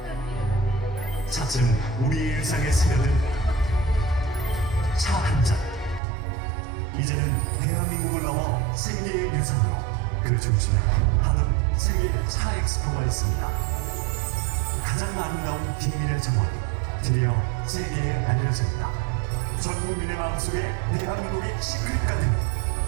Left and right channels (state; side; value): drops out; left; at 6.0 s